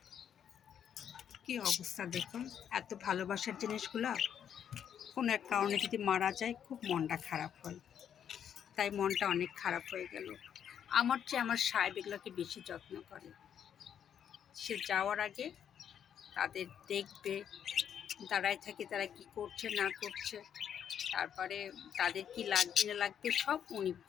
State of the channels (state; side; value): quieter; right; 8.8 dB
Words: কি অবস্থা দেখুন, এত ভালোবাসার জিনিসগুলা কোনো এক কারণে যদি মারা যায় খুব মনটা খারাপ হয়। তাই মনটা অনেক খারাপ হয়ে গেল। আমার চেয়ে আমার সাহেব এগুলোকে বেশি যত্ন করে। সে যাওয়ার আগে তাদের দেখবে, দাঁড়ায় থাকে তারা কি করছে না করছে, তারপরে তাদের কি লাগবে না লাগবে সব উনি